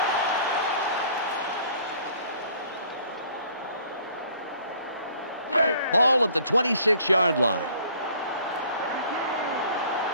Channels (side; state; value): both; inverted; correlation -0.55